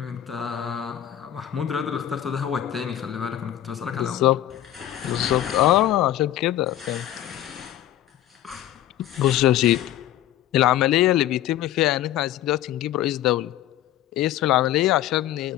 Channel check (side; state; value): right; quieter; 12.7 dB